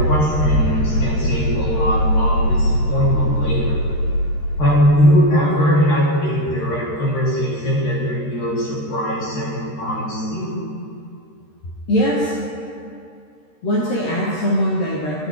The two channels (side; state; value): right; late; 13 ms